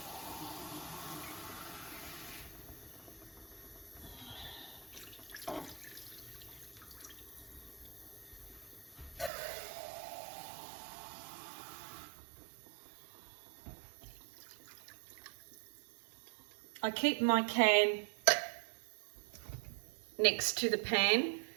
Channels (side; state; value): left; drops out; at 9.3 s